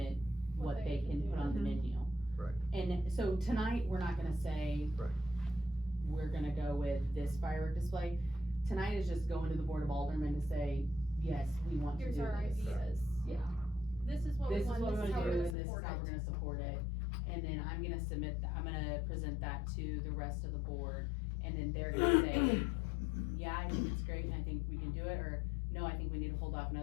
what they can put on the menu. Right. And so tonight, we're not gonna say. Right. We're gonna go with this firework display. Tonight is just going to the Board of Aldermen to say, yes, we want to do Here's this. our ideas. Yeah. This is what we This is want, what this we're is how gonna we're do, gonna and this is support how we're it. gonna support it. And then I'm gonna I'm gonna present that to the rest of the board, and then they're gonna say, yeah, I think it's great, and I think we can do it, or no, I think we need to hold off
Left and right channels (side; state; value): right; drops out; at 15.6 s